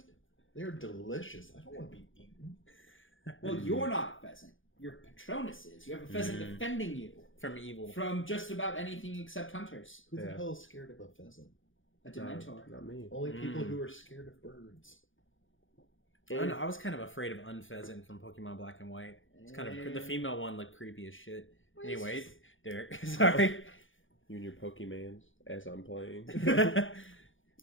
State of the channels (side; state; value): right; late; 0.57 ms